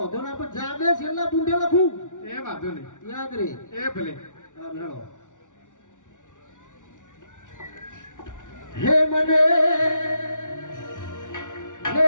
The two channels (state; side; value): late; right; 0.87 ms